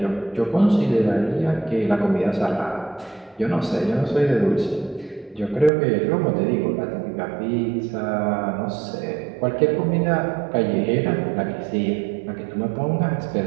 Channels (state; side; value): drops out; left; at 5.7 s